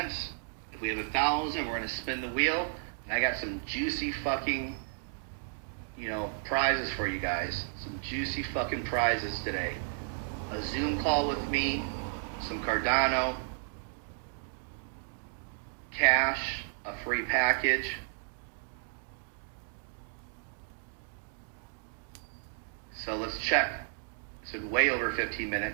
If we have 1,000, we're going to spin the wheel. And I got some juicy fucking, prizes for you guys. Some juicy fucking prizes today. A Zoom call with me, some Cardano, cash, a free package. So let's check. It's been way over 15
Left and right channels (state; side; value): silent; left; digital silence